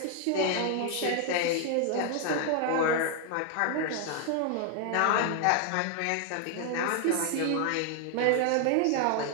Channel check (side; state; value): both; different; correlation 0.00